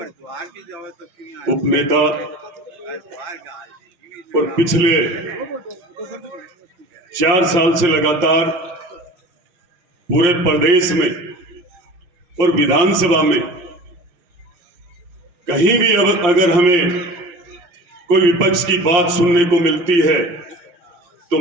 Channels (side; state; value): left; late; 5.7 ms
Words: उपनेता और पिछले 4 साल से लगातार पूरे प्रदेश में और विधानसभा में कहीं भी अगर हमें कोई विपक्ष की बात सुनने को मिलती है तो